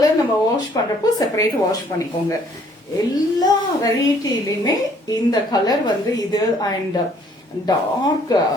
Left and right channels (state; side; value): normal; both; correlation 0.62